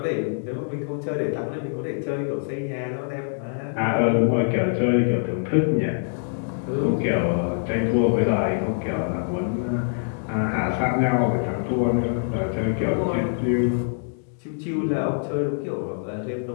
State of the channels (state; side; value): silent; right; digital silence